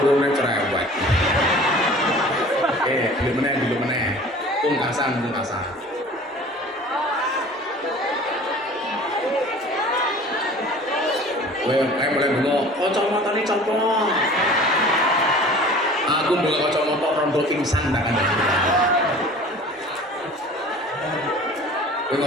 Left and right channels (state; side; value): normal; both; correlation 0.44